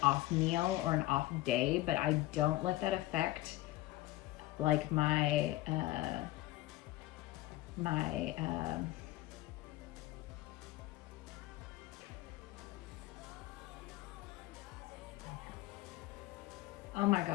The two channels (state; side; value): quieter; right; 17.1 dB